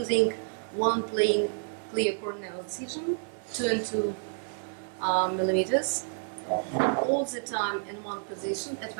one plain clear corneal incision, 2 and 2 millimeters, all the time in one position at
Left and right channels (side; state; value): left; silent; digital silence